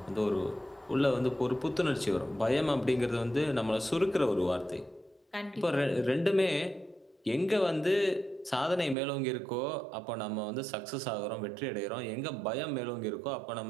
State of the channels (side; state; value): left; drops out; at 9.0 s